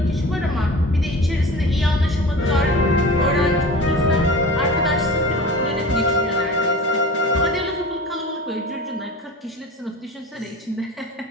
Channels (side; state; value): both; normal; correlation 0.36